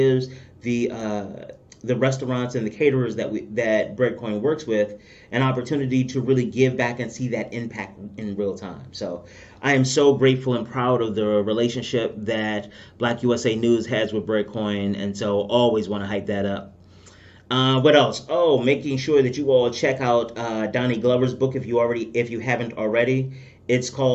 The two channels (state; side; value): identical; both; correlation 1.00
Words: the the restaurants and the caterers that Breadcoin works with an opportunity to really give back and see that impact in real time. So I am so grateful and proud of the relationship that Black USA News has with Breadcoin, and so always want to hype that up. What else? Oh, making sure that you all check out Donnie Glover's book if you haven't already. It's